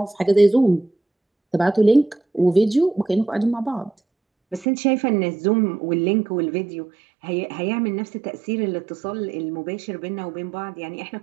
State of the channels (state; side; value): drops out; left; at 4.7 s